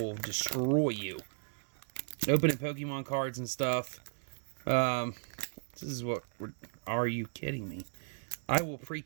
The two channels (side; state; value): left; silent; 54 dB below the other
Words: destroy you. Opening Pokemon cards and stuff. This is what... Are you kidding me? I will